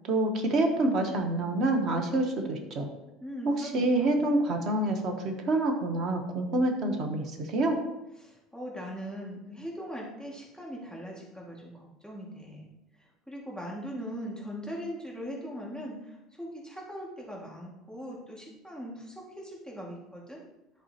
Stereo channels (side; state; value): both; normal; correlation 0.48